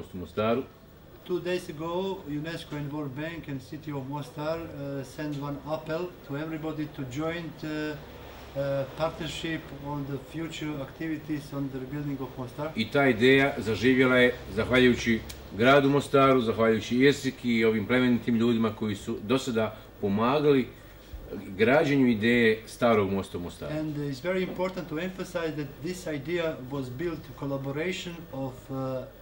u Mostaru. 2 days ago, UNESCO and World Bank and City of Mostar sent one appeal to everybody to join partnership on the future activities on the rebuilding of Mostar. I ta ideja zaživjela je zahvaljujući gradu Mostaru, zahvaljujući Jesiki i ovim plemenitim ljudima koji su do sada pomagali građenju ideje starog mosta u Mostaru. And it's very important to emphasize that this idea was built in collaboration of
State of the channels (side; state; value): both; identical; correlation 1.00